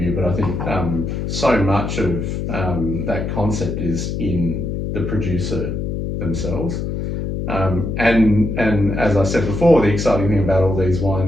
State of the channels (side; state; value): left; noise; hum, 3 dB below the sound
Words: but I think so much of that concept is in the producer themselves. And as I said before, the exciting thing about all these